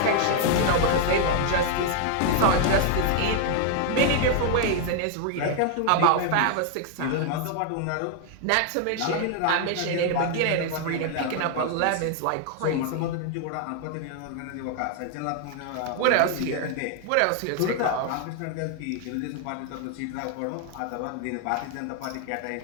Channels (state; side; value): different; both; correlation 0.00